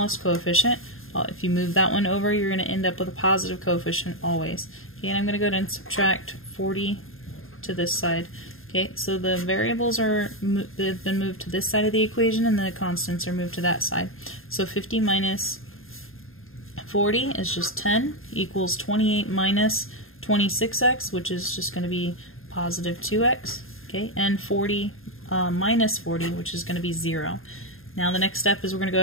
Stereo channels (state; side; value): late; right; 0.60 ms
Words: coefficient. If you move that one over, you're going to end up with a positive coefficient always. Okay, and I'm going to go ahead and subtract 40 to this side. Okay, so the variables they've been moved to this side of the equation, and the constants are moved to that side. So 50 minus 40 is just 10, equals 28 minus 26x, which is just going to be positive 2x. Okay, and 40 minus 40, which is going to be 0. Now the next step is we're going to go